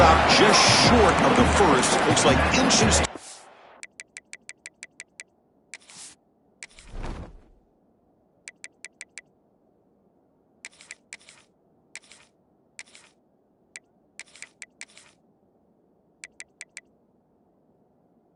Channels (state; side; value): identical; both; correlation 1.00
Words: just short of the first. Looks like inches.